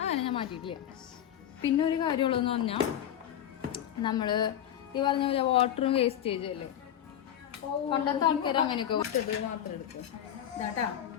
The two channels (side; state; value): right; quieter; 10.5 dB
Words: ഞാൻ മാറ്റിയിട്ടില്ല. പിന്നെ ഒരു കാര്യമുള്ളതെന്ന് പറഞ്ഞാൽ നമ്മൾ ഈ പറഞ്ഞ പോലെ വാട്ടറും വേസ്റ്റേജും അല്ലേ, പണ്ടത്തെ ആൾക്കാർ അങ്ങനെയൊക്കെ മാത്രം എടുക്കും. ഇതാട്ടാ